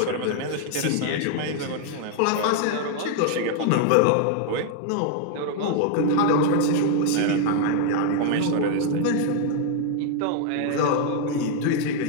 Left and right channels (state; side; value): different; both; correlation 0.00